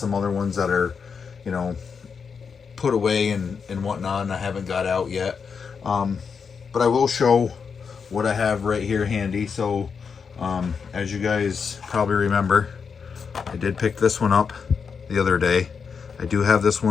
other ones that are, you know, put away and whatnot, and I haven't got out yet. But I will show what I have right here handy. So as you guys probably remember, I did pick this one up the other day. I do have this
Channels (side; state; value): right; quieter; 6.0 dB